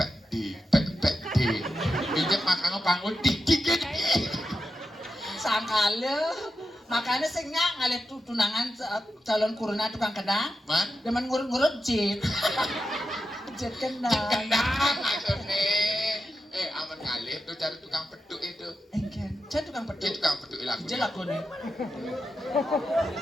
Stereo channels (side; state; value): both; normal; correlation 0.89